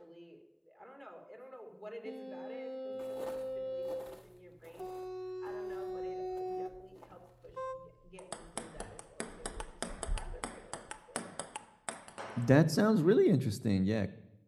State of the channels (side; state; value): both; identical; correlation 1.00